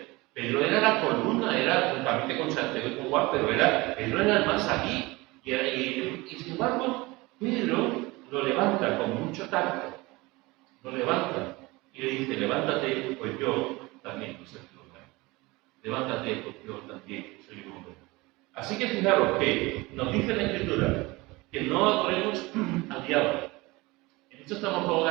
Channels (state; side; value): quieter; left; 22.4 dB